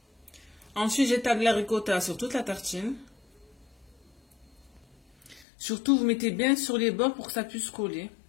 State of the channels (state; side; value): drops out; right; at 5.5 s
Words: Ensuite, j'étale la ricotta sur toute la tartine. Surtout, vous mettez bien sur les bords pour que ça puisse coller.